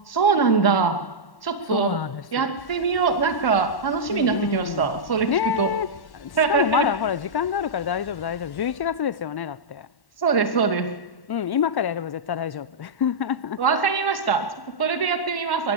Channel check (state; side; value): late; right; 1.1 ms